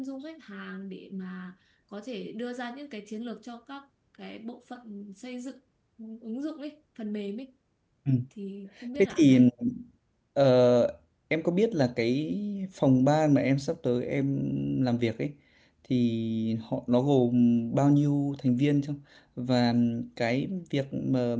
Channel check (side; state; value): both; identical; correlation 1.00